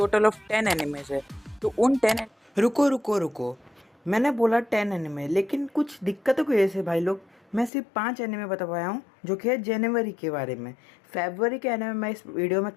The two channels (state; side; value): drops out; right; at 7.7 s